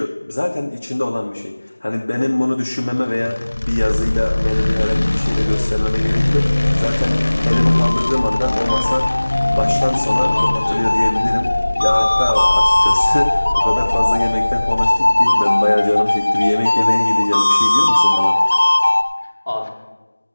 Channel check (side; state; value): both; inverted; correlation -1.00